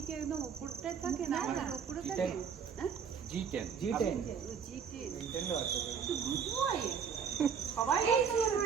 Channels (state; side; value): quieter; left; 6.8 dB